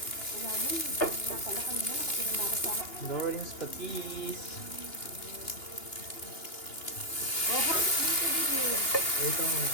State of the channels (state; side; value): late; right; 2.8 ms